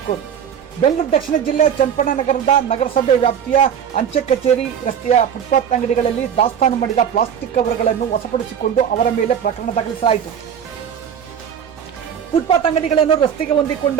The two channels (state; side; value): quieter; left; 8.3 dB